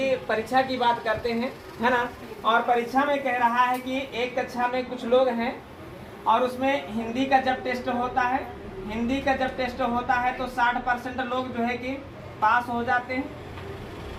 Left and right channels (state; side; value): identical; both; correlation 1.00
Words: परीक्षा की बात करते हैं, है ना। और परीक्षा में कह रहा है कि एक कक्षा में कुछ लोग हैं और उसमें हिंदी का जब टेस्ट होता है, हिंदी का जब टेस्ट होता है तो 60% लोग जो है कि पास हो जाते हैं,